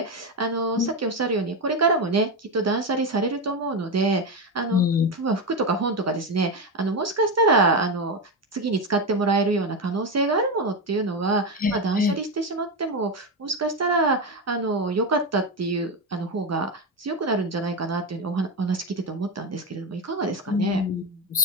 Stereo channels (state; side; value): normal; both; correlation 0.13